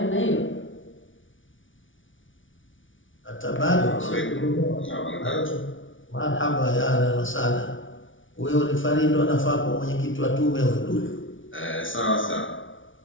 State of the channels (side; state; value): right; late; 0.56 ms